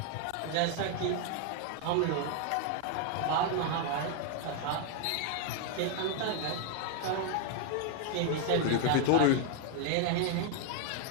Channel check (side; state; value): both; different; correlation 0.00